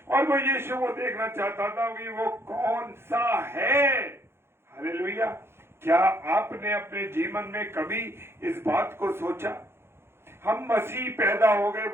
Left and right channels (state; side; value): late; left; 0.12 ms